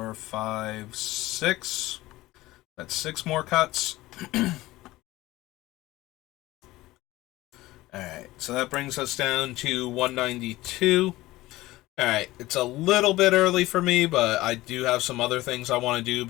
5, 6. That's 6 more cuts. Alright, so that brings us down to 192. Alright, it's a little bit early for me, but I do have some other things I want to do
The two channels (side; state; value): right; quieter; 18.0 dB